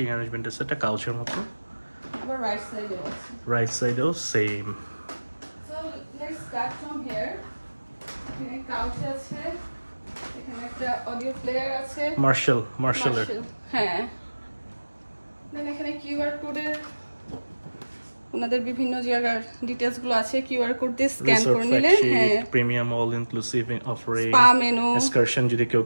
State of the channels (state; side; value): inverted; both; correlation -1.00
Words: অ্যারেঞ্জমেন্ট আছে, একটা কাউচের মতো। আবার রাইট সাইডে আছে। রাইট সাইডেও same. So let's start from here. এখানে কাউচ আছে, এখানে একটা অডিও প্লেয়ার আছে, মার্শালের। হ্যাঁ। দেন এখানে কিউআর কোডের ওনাদের বিভিন্ন জায়গার ডিটেইলস গুলো আছে, কিউআর কোড দিয়ে স্ক্যান করে নিলে হ্যাঁ, premium all inclusive offering, spa menu, excursion যদি কেউ